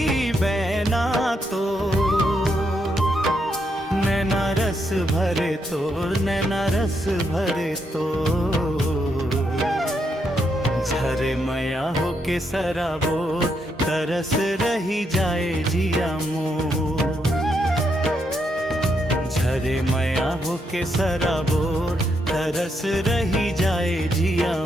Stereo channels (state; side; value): normal; both; correlation 0.79